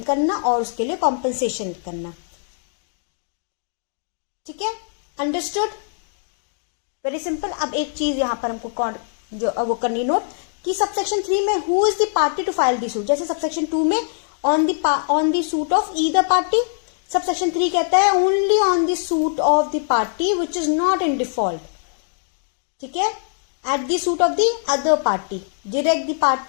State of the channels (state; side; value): silent; right; digital silence